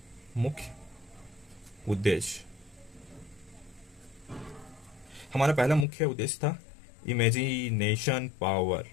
मुख्य उद्देश्य, हमारा पहला मुख्य उद्देश्य था इमेजिनेशन पावर।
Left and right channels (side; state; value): right; drops out; at 5.9 s